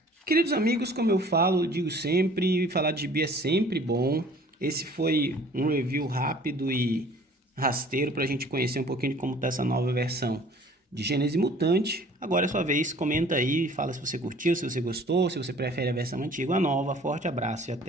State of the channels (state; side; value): normal; both; correlation 0.51